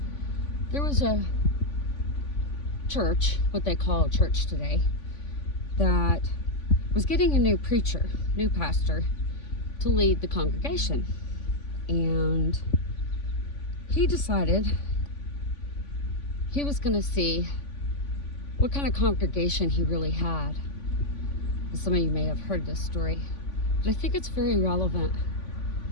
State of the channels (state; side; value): late; right; 3.5 ms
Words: There was a church, what they call a church today, that was getting a new preacher, new pastor, to lead the congregation. And he decided he was going to see what kind of congregation he really had. And some of you may have heard this story, but I think it's very relevant.